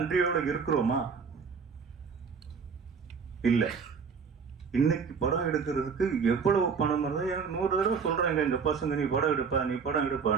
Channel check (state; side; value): quieter; left; 5.8 dB